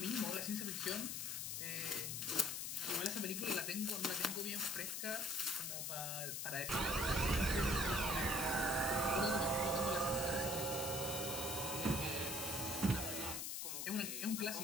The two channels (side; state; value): left; noise; hiss, 3 dB below the sound